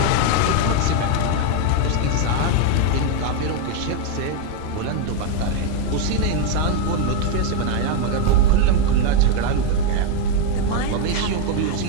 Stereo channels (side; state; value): both; different; correlation 0.02